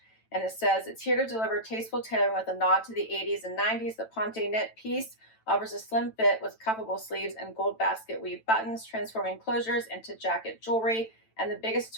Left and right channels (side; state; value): right; late; 9.0 ms